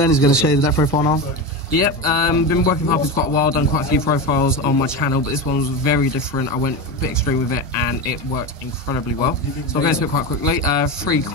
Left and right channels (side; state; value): both; normal; correlation 0.21